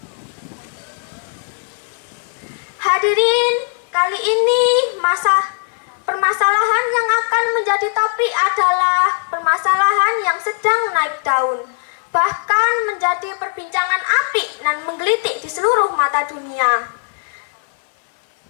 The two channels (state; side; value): silent; right; 56 dB below the other